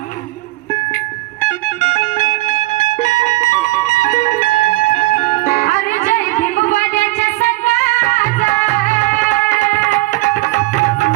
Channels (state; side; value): quieter; left; 19.8 dB